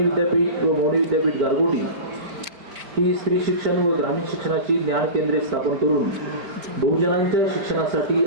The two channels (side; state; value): left; late; 4.3 ms